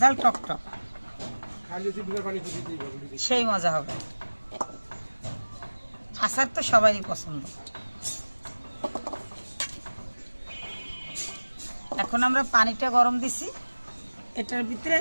ঝাল টক টক, সেই মজা হবে। আচার তো সবারই পছন্দ। এখন আমরা পানিটা গরম দিছি, এটার ভিতরে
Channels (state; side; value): inverted; both; correlation -1.00